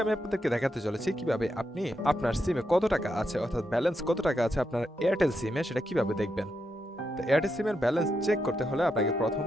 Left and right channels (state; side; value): normal; both; correlation 0.84